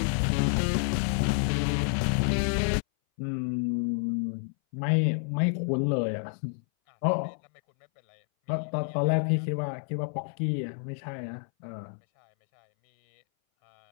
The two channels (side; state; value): right; silent; 59 dB below the other